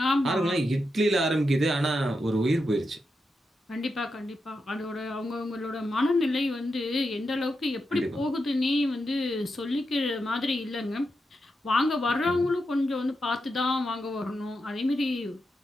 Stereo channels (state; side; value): normal; both; correlation 0.86